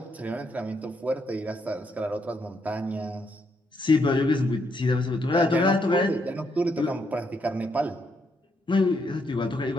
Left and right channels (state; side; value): normal; both; correlation 0.76